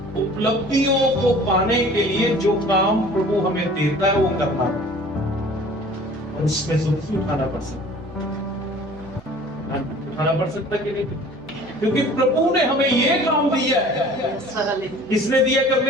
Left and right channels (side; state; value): right; noise; hum, 23 dB below the sound